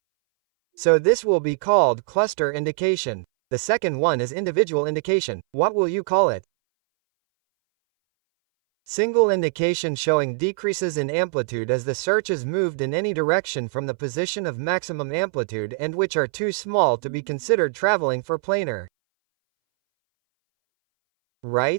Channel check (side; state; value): left; silent; 61 dB below the other